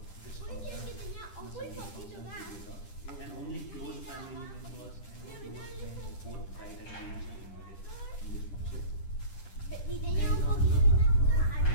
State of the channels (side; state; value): right; late; 10 ms